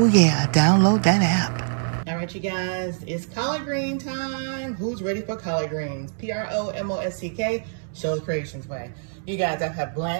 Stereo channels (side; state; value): left; silent; digital silence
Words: yeah. Download that app. All right, you guys, it's collard green time. Who's ready for collard greens? PROMOSTK, Sheila's Creations Way. You guys, I have